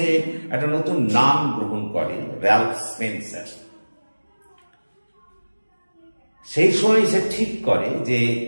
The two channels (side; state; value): both; inverted; correlation -1.00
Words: একটা নতুন নাম গ্রহণ করে, র্যালফ স্পেন্সার। সেই সময় সে ঠিক করে যে